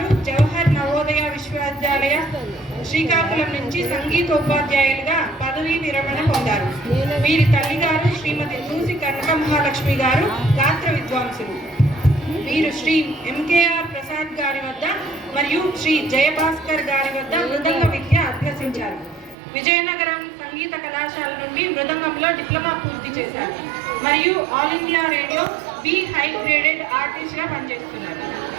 జవహర్ నవోదయ విశ్వవిద్యాలయ శ్రీకాకుళం నుంచి సంగీతోపాధ్యాయులుగా పదవీ విరమణ పొందారు. వీరి తల్లిగారు శ్రీమతి దూసి కనక మహాలక్ష్మి గారు గాత్ర విద్వాంసులు. వీరు శ్రీ ఎంకేఆర్ ప్రసాద్ గారి వద్ద మరియు శ్రీ జయభాస్కర్ గారి వద్ద మృదంగ విద్య అభ్యసించారు. విజయనగరం సంగీత కళాశాల నుండి మృదంగంలో డిప్లొమా పూర్తి చేశారు మరియు all India radio B high graded ఆర్టిస్ట్గా పనిచేస్తున్నారు.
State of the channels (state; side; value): drops out; left; at 19.4 s